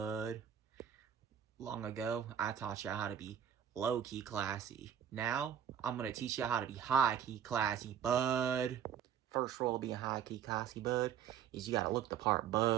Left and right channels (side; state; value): left; quieter; 8.9 dB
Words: Long ago, I taught y'all how to be low-key classy. Now, I'm going to teach y'all how to be high-key classy, bud. First rule of being high-key classy, bud, is you got to look the part,